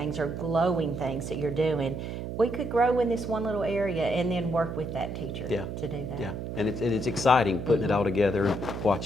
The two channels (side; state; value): right; noise; hum, 6 dB below the sound